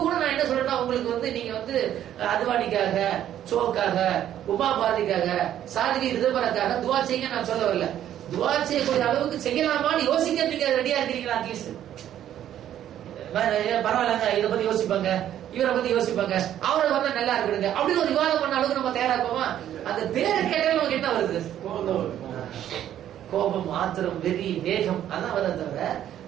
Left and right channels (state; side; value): quieter; left; 11.2 dB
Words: கூட நான் என்ன சொல்றேன்னா உங்களுக்கு நீங்க அத்வானிக்காக, சோக்காக, உமா பாரதிக்காக, சாதிகி ரிதபரக்காக துவா செய்ய நான் சொல்ல வரல. துவா செய்யக்கூடிய அளவுக்கு செய்யலாமான்னு யோசிக்க நீங்க ரெடியா இருக்கிறீங்களா? அட்லீஸ்ட் பரவாயில்லங்க, இதை பத்தி யோசிப்பாங்க, இவரை பத்தி யோசிப்பாங்க, அவரை வந்தா நல்லா இருக்குங்க அப்படின்னு ஒரு விவாதம் பண்ண அளவுக்கு நம்ம தயாரா இருப்போமா? அந்த பேரை கேட்டாலும் நமக்கு என்ன வருது? கோபம், ஆத்திரம், வெறி, வேகம், அதான் வருது. தவிர